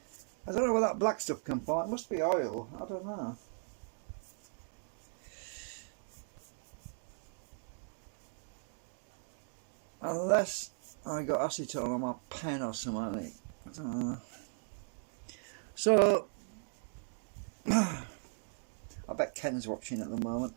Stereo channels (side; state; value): left; silent; digital silence